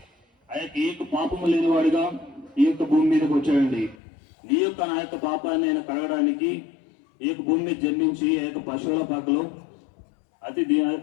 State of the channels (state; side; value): drops out; right; at 4.0 s